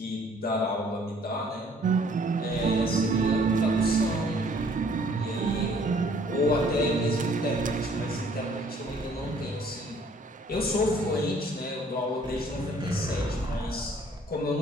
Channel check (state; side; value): normal; both; correlation 0.59